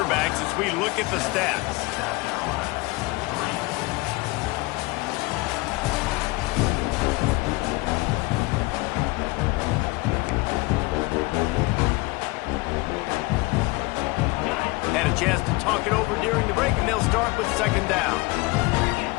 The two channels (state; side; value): quieter; right; 23.4 dB